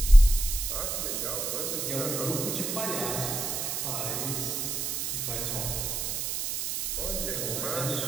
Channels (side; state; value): right; noise; hiss, 2 dB below the sound